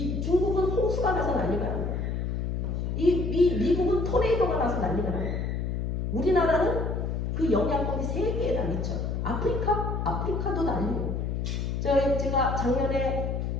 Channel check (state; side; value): noise; left; hum, 1 dB below the sound